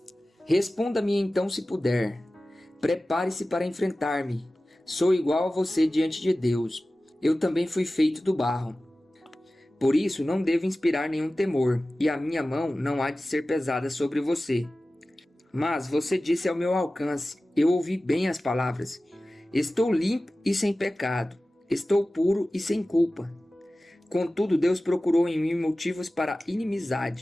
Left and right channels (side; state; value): both; normal; correlation 0.96